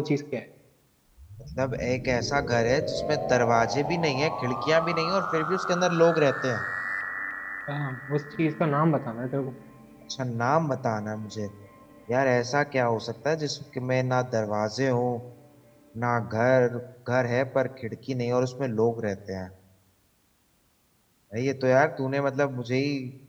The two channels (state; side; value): identical; both; correlation 1.00